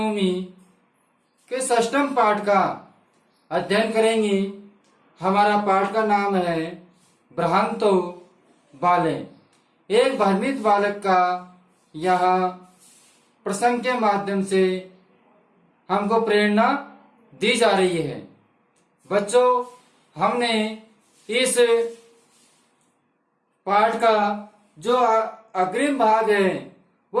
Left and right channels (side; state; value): both; identical; correlation 1.00